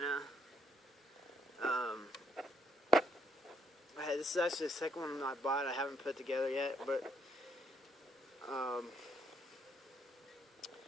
This is actually the second one I bought. I haven't put together yet, but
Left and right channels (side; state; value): both; normal; correlation 0.72